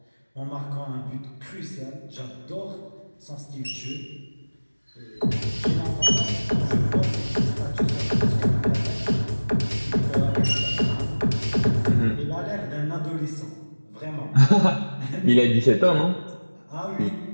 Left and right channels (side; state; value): both; inverted; correlation -1.00